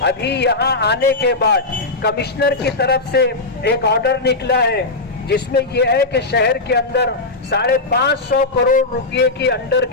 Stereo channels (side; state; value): right; quieter; 3.2 dB